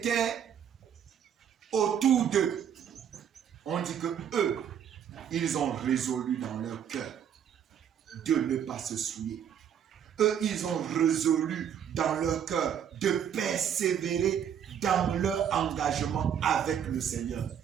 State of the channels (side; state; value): left; quieter; 8.8 dB